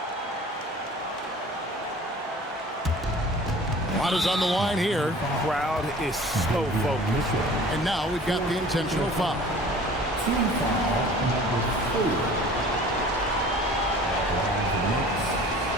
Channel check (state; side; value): normal; both; correlation 0.46